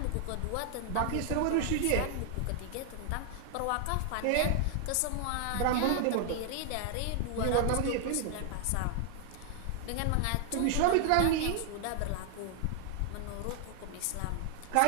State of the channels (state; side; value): different; both; correlation 0.00